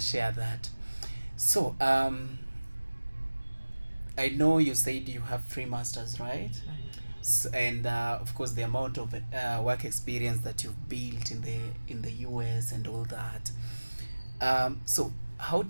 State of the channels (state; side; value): inverted; both; correlation -1.00